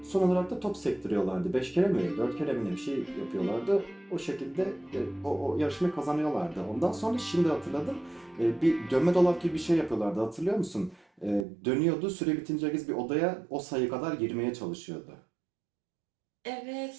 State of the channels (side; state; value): left; drops out; at 11.5 s